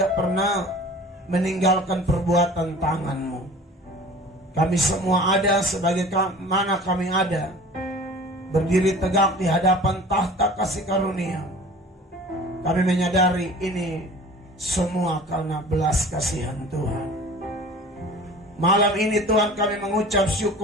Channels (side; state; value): both; normal; correlation 0.43